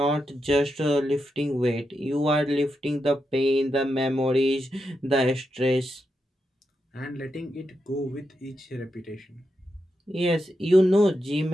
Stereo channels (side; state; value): both; normal; correlation 0.86